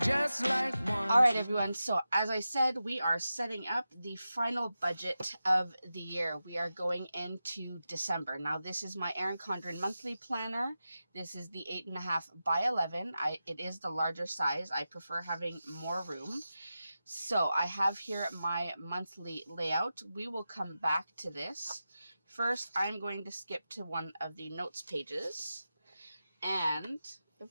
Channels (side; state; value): both; inverted; correlation -0.92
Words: like one. All right, everyone. So as I said, we are setting up the final budget of the year. We are going into December. Now, this is my Erin Condren monthly planner. This is the 8.5 by 11. It is the larger size. I prefer having more room. So I have here my monthly layout. We will come back to this. First, I'm going to skip to one of the notes pages. And, of